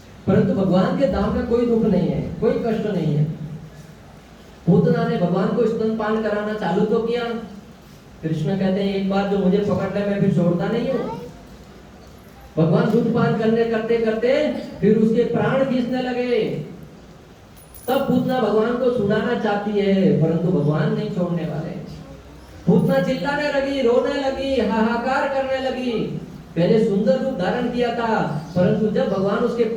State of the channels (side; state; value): both; identical; correlation 1.00